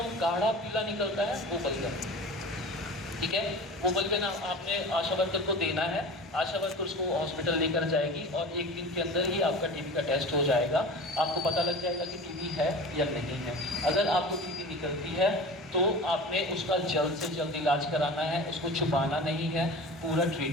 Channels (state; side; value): normal; both; correlation 0.35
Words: गाढ़ा पीला निकलता है, वो बलगम, ठीक है। वो बलगम आपने आशा वर्कर को देना है। आशा वर्कर उसको हॉस्पिटल लेकर जाएगी और 1 दिन के अंदर ही आपका टीबी का टेस्ट हो जाएगा। आपको पता लग जाएगा कि टीबी है या नहीं है। अगर आपको टीबी निकलती है तो आपने उसका जल्द से जल्द इलाज कराना है, उसको छुपाना नहीं है, पूरा